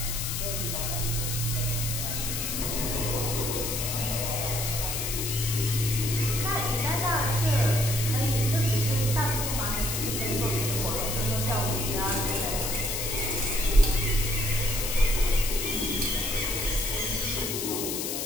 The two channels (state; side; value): noise; left; hiss, 2 dB below the sound